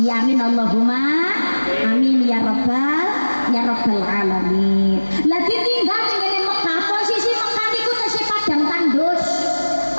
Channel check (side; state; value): both; inverted; correlation -1.00